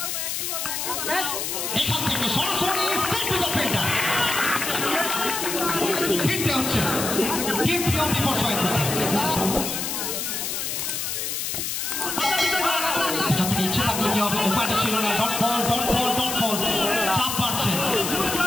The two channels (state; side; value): noise; left; hiss, 2 dB below the sound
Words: এখান থেকে সরাসরি স্টেপ টু দ্য ফিল্ডার ফিরতে হচ্ছে টিম পিও বিপর্যয় করতে এখান থেকে ইচ্ছে থাকলে কি হবে উপায়টা ছিল না dot ball dot ball dot ball চাপ বাড়ছে